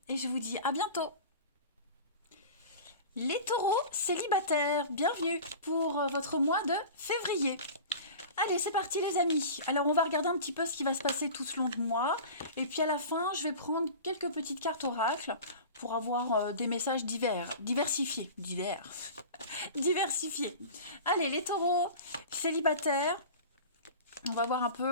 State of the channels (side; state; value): both; inverted; correlation -0.35